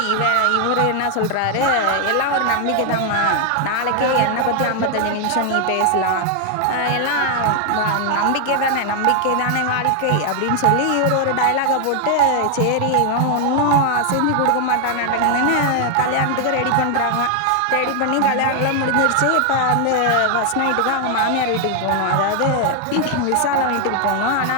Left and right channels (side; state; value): both; different; correlation 0.00